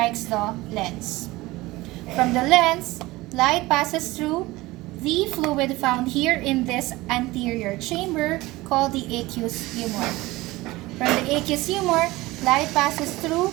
the lens. From the lens, light passes through the fluid found here in this anterior chamber called the aqueous humor. From the aqueous humor, light passes through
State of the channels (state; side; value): quieter; left; 19.7 dB